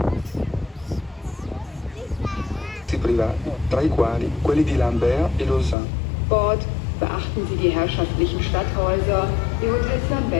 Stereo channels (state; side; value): drops out; right; at 5.8 s